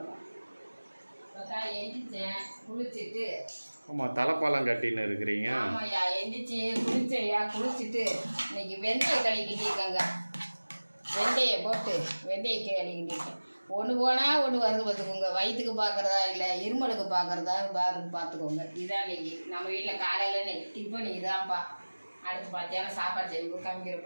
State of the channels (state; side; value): inverted; both; correlation -1.00